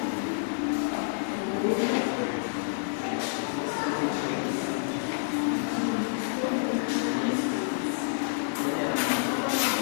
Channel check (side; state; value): right; silent; 59 dB below the other